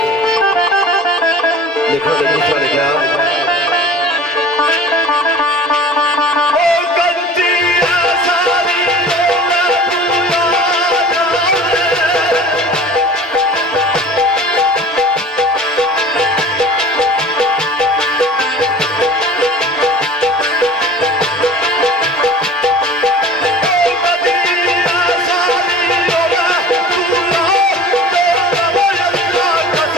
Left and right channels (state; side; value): normal; both; correlation 0.42